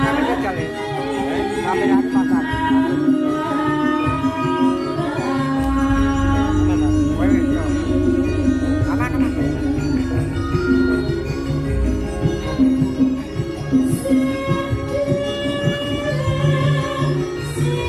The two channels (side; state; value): both; identical; correlation 1.00